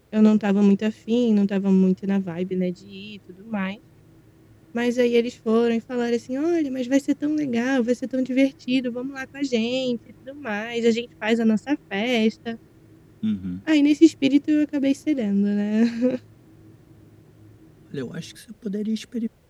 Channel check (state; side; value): identical; both; correlation 1.00